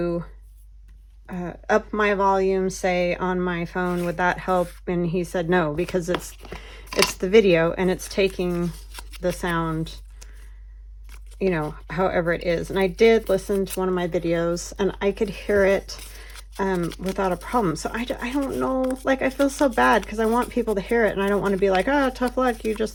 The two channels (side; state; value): both; identical; correlation 1.00